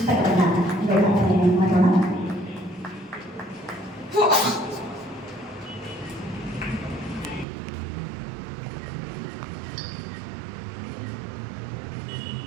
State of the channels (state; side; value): drops out; left; at 7.5 s